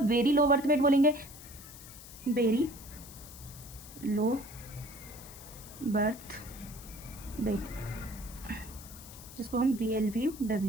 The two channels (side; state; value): left; noise; hiss, 16 dB below the sound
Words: वेरी लो बर्थ वेट बोलेंगे, वेरी लो बर्थ वेट, जिसको हम